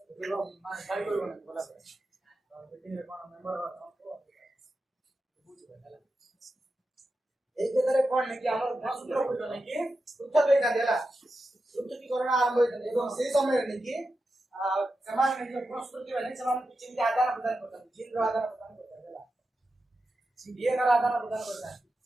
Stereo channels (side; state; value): both; normal; correlation 0.90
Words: এগুলো মানে ট্রাই করব না বলা যায় মিটিংরে কোন মেম্বার বুঝবে ହେଲା এই ক্ষেত্রে কোন নাকি আমার গুণসূত্র গুলো নাকি পৃথকীকরণ ହେଲା পৃথকীকরণ আরম্ভ হইছে এবং সেই সময়ে নাকি সমান নাকি গুণসূত্র কি মানে সমান চিহ্ন আদান প্রদান করতে চিহ্ন আদান প্রদান করতে ହେଲା চিহ্ন আদান প্রদান করতে